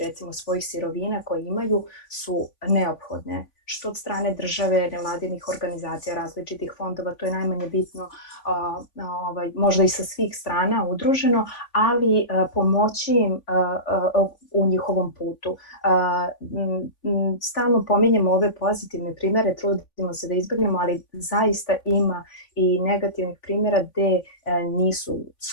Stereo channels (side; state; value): right; late; 3.5 ms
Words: recimo svojih sirovina koje imaju su neophodne, što od strane države, nevladinih organizacija, različitih fondova, to je najmanje bitno, možda i sa svih strana udruženo, ali pomoći im u njihovom putu. Stalno pominjemo ove pozitivne primere, trudimo se da izbjegnemo, ali zaista ima i negativnih primjera gde nisu